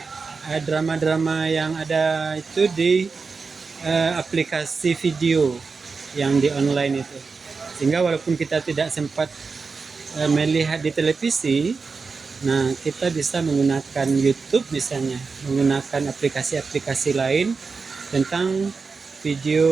drama-drama yang ada itu di aplikasi video yang di online itu. Sehingga walaupun kita tidak sempat melihat di televisi, nah kita bisa menggunakan YouTube misalnya, menggunakan aplikasi-aplikasi lain tentang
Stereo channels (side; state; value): left; quieter; 4.7 dB